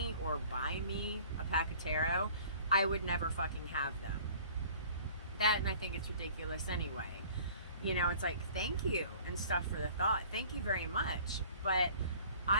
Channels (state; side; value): inverted; both; correlation -0.49